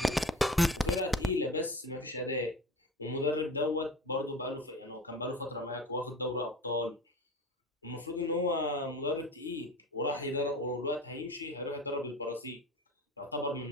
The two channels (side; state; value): both; normal; correlation 0.35